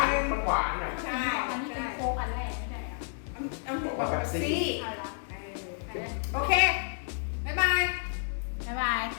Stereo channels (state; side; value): silent; right; digital silence